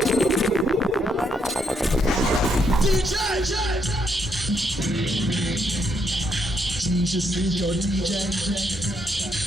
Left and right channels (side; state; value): both; normal; correlation 0.75